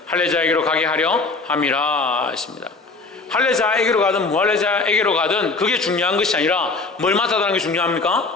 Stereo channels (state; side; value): quieter; right; 3.8 dB